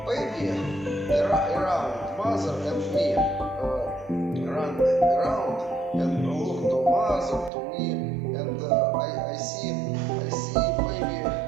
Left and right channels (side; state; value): left; drops out; at 7.5 s